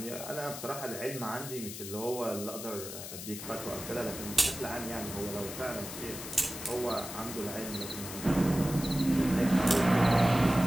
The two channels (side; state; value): left; noise; hiss, 9 dB below the sound